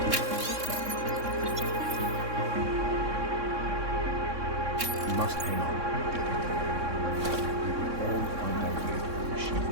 We must hang on. We will all find our way to the machine.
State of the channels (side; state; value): left; late; 3.6 ms